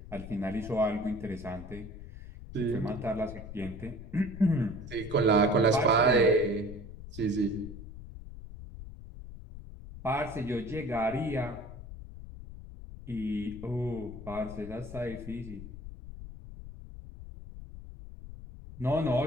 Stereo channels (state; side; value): noise; left; rumble, 12 dB below the sound